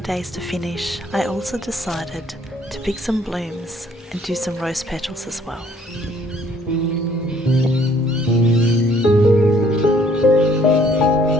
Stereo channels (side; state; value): both; normal; correlation 0.61